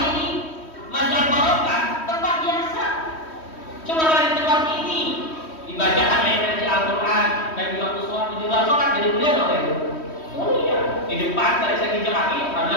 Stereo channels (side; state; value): right; late; 3.1 ms